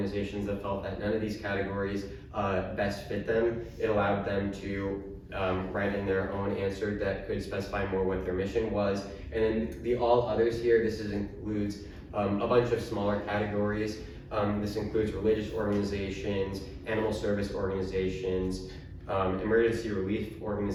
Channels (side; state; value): both; identical; correlation 1.00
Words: that felt that none of these categories best fit them. It allowed them to write in their own answer that could specify more what their mission was. And then the all others here, includes a bunch of smaller categories. This includes religious organizations, animal service organizations, emergency relief